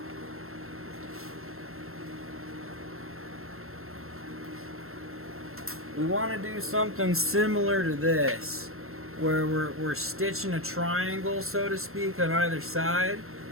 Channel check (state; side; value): late; left; 0.62 ms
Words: We want to do something similar to this, where we're stitching a triangle, so to speak, on either side,